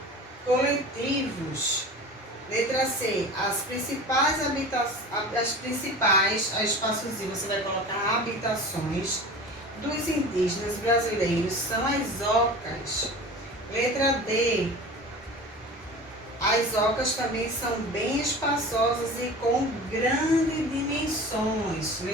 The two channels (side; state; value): both; normal; correlation 0.36